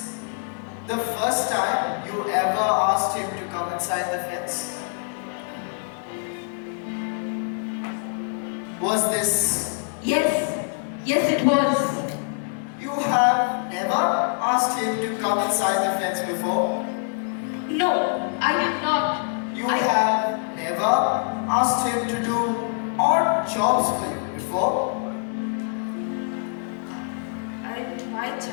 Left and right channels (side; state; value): right; silent; 62 dB below the other